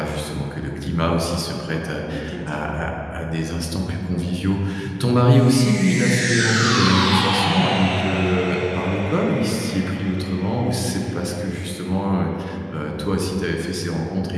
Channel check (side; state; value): both; identical; correlation 1.00